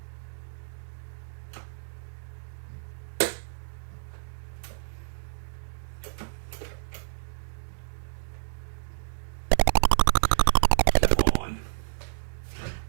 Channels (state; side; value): silent; left; digital silence